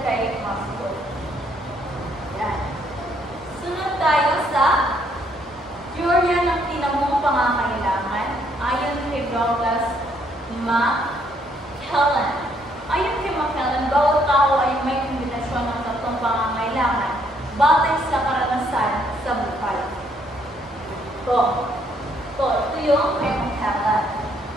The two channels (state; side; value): normal; both; correlation 0.69